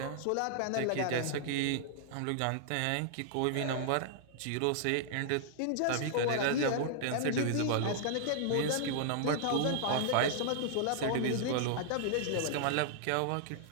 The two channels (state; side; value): different; both; correlation -0.01